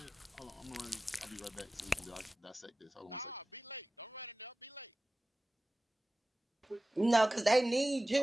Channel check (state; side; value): normal; both; correlation 0.96